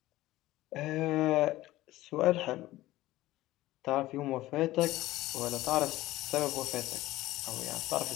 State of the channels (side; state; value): right; quieter; 16.7 dB